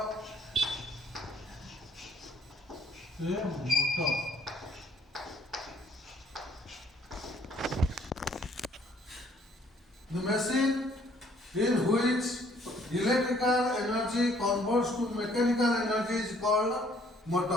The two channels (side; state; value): both; normal; correlation 0.62